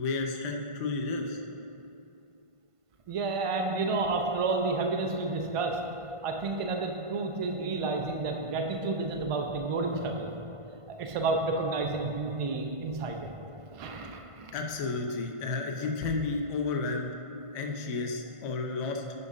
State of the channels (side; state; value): left; late; 1.5 ms